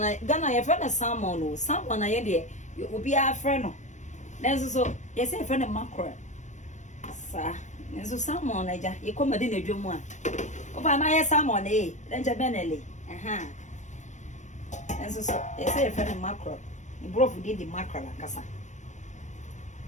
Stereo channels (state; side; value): late; right; 0.35 ms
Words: ye fa na salmon na ye de obi afre no. Then so yes, a friend of mackerel. Sir, and so salmon, you come in a drum one. Oh, my salmon, then Jabenelli. And so yes, a friend of mackerel. You broke did the mackerel and cassa.